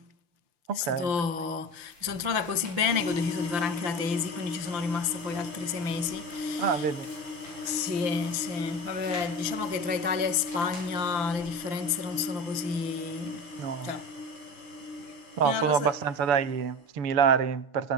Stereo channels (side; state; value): left; late; 5.9 ms